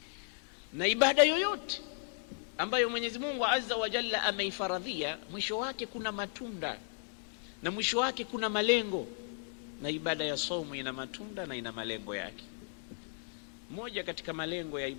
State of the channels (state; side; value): silent; right; digital silence